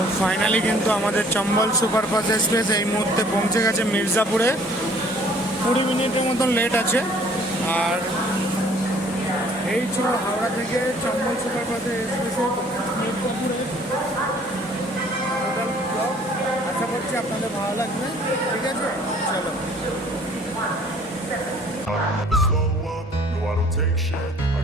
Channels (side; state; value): both; normal; correlation 0.56